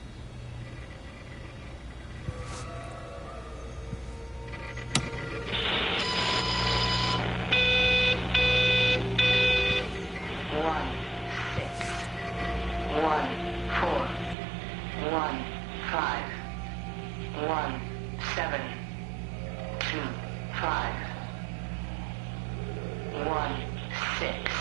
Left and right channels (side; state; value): left; drops out; at 14.4 s